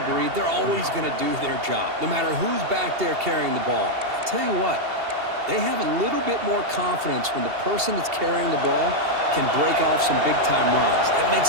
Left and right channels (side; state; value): left; late; 2.7 ms